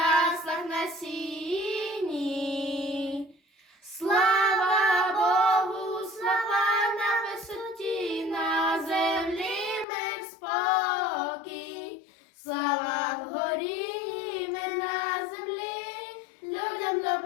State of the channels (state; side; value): drops out; right; at 9.9 s